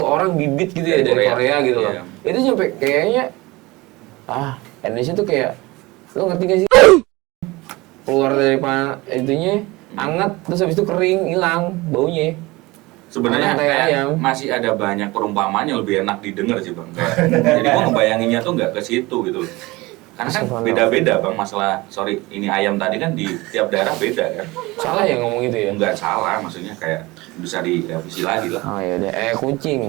orang bibit gitu ya Dari dari Korea. Korea gitu loh. Iya. Itu sampai kayaknya Indonesia tuh kayak lo ngerti gak sih? Keluar dari itunya anget terus habis itu kering hilang baunya. Sebenarnya Orang kayak kayak ayam. masih ada banyak perumpamaan yang lebih enak didengar sih bang. Jadi gua ngebayanginnya tuh nggak ke situ gitu. Karena kan beda-beda bang masalah. Sorry, ini ayam tadi kan di tiap daerah beda kan. Salah ya ngomong gitu ya? Nggak salah, maksudnya kayak bisa direvisi lagi lah. Oh ya udah,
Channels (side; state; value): left; quieter; 21.8 dB